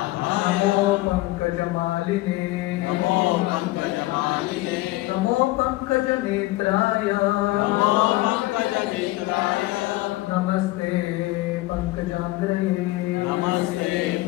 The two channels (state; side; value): quieter; right; 18.9 dB